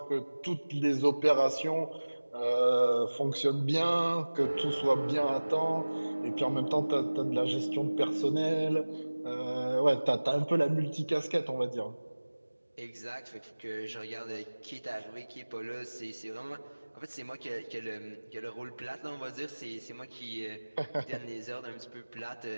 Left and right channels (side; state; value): both; inverted; correlation -1.00